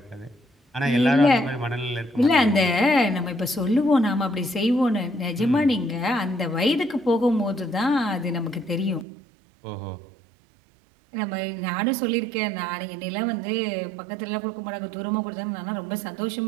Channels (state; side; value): drops out; left; at 9.1 s